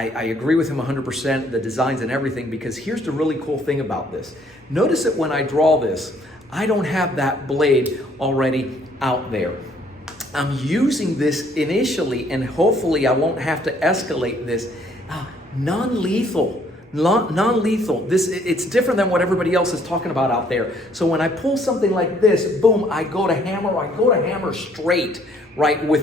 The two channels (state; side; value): normal; both; correlation 0.63